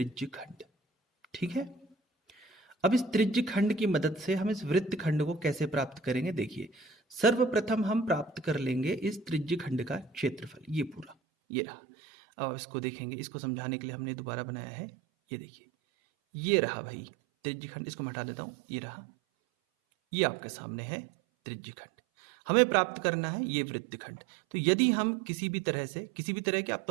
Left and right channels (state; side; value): drops out; left; at 11.2 s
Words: खंड। ठीक है, अब इस त्रिज्य खंड की मदद से हम इस वृत्त खंड को कैसे प्राप्त करेंगे, देखिए, सर्वप्रथम हम प्राप्त कर लेंगे इस त्रिज्य खंड का क्षेत्रफल, ये पूरा, ये रहा। अब इसको देखेंगे, इसको समझाने के लिए हमने दोबारा बनाया है, ये देखिए, ये रहा भाई त्रिज्य खंड, इसको मैं हटा देता हूं, ये रहा, ये आपके सामने है त्रिज्य खंड। हमें प्राप्त करना है ये वृत्त खंड। तो यदि हम किसी भी तरह के, अब